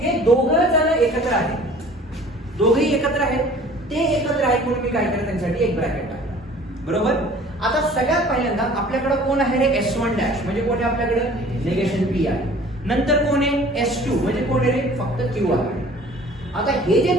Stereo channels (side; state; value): both; normal; correlation 0.49